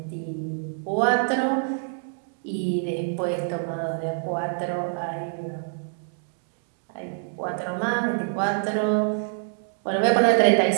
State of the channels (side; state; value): left; silent; digital silence